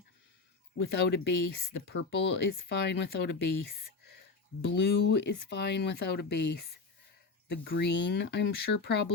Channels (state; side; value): quieter; right; 4.2 dB